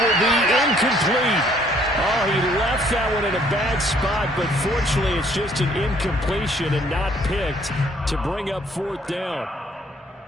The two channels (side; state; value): both; normal; correlation 0.62